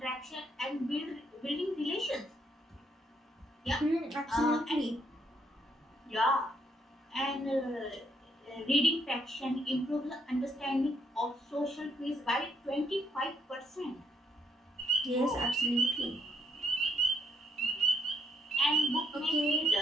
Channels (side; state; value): both; normal; correlation 0.72